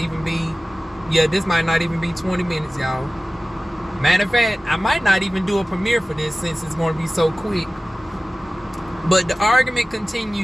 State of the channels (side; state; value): both; normal; correlation 0.97